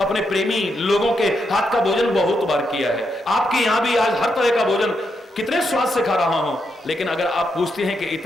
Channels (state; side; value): normal; both; correlation 0.81